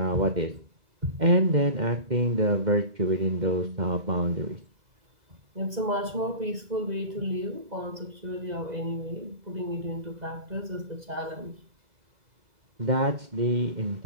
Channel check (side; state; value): left; late; 2.0 ms